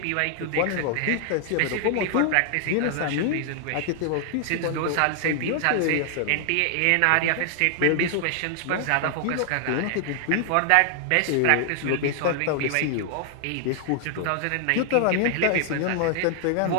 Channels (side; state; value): both; different; correlation 0.00